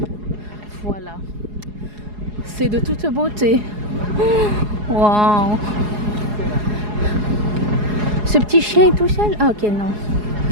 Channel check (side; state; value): left; late; 4.8 ms